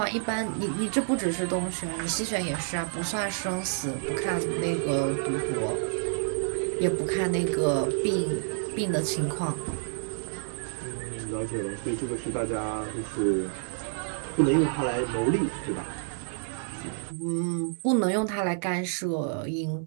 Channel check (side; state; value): left; silent; digital silence